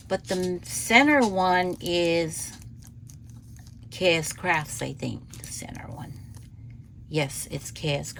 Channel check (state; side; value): identical; both; correlation 1.00